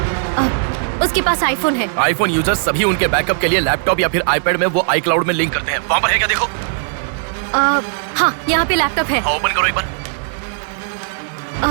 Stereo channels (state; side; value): silent; left; digital silence